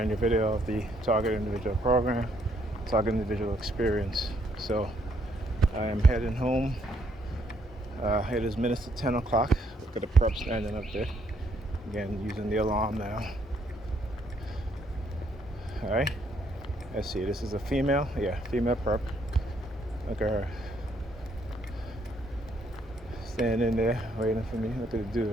new video of the Target Individual program, Target Individual Experience. So I am heading home. It is minutes to 10 o'clock. Look at the prep standing up there. Again, using the alarm now. All right, let's see, this is a female, female prep. Look at her. Standing there, waiting for me. Look at the dude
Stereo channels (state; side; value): normal; both; correlation 0.70